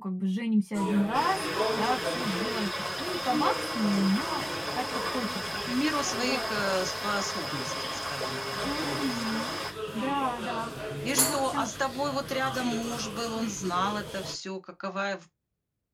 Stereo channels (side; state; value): both; identical; correlation 1.00